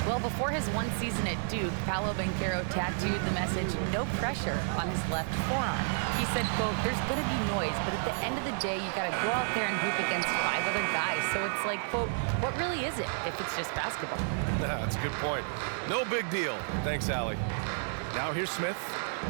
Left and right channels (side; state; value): left; silent; 57 dB below the other